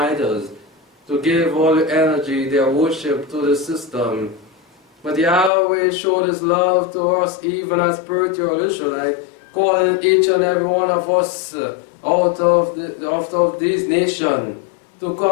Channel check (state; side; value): drops out; right; at 5.5 s